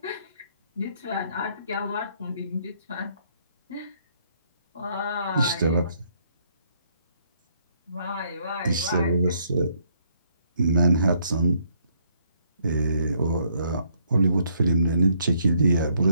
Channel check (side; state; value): both; inverted; correlation -0.70